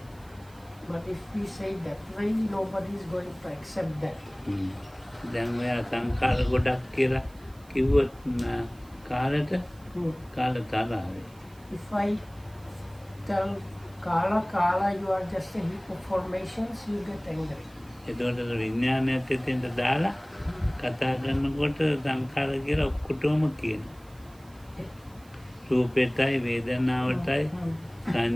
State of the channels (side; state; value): right; noise; hiss, 27 dB below the sound